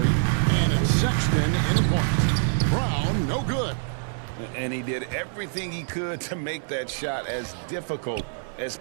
and it's Sexton in the point. Brown, no good. And he did everything he could to make that shot as difficult as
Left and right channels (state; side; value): silent; left; digital silence